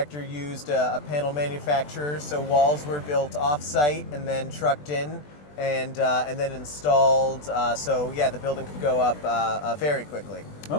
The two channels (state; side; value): late; right; 20 ms